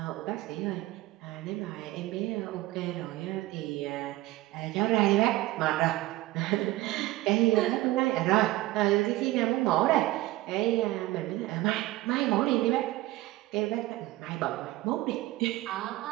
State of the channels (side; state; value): left; quieter; 18.0 dB